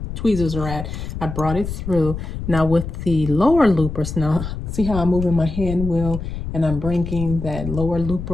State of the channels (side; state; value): left; noise; rumble, 7 dB below the sound